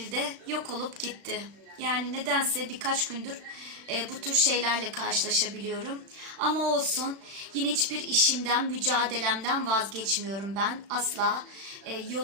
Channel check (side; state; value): left; late; 35 ms